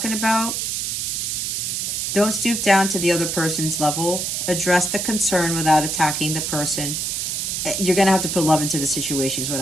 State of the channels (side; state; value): right; noise; hiss, 1 dB below the sound